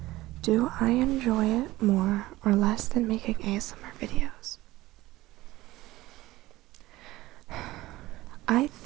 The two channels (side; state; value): left; quieter; 17.7 dB